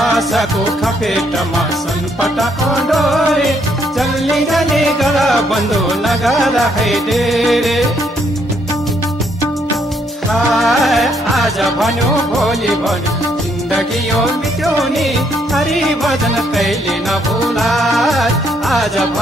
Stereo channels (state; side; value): normal; both; correlation 0.71